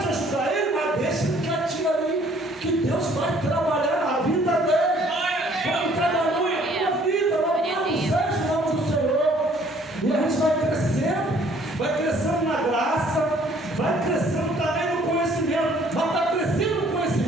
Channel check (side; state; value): both; normal; correlation 0.59